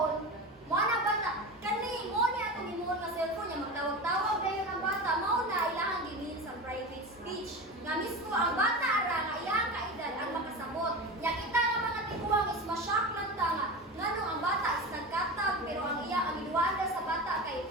Mo na bata. Kani, mo niya itong imo na cellphone niya. Magtawag-tawag kayo ng bata. Mo na ilang ginin sa private speech. Nga mismo ang bata ara nga iyang kaedad ang makasabot. Nya kita nga mga tiguang is ma-shock lang ta nga ngano ang bata is nagkatag pero ang iya ang iduanda sa bata kay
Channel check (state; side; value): normal; both; correlation 0.26